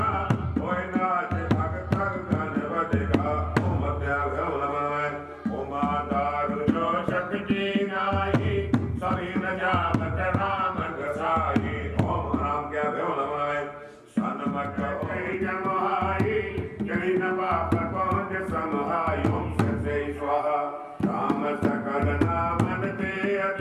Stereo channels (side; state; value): both; identical; correlation 1.00